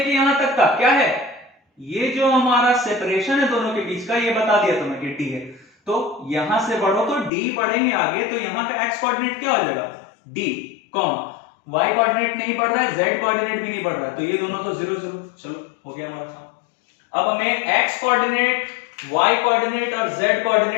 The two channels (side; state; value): right; drops out; at 7.3 s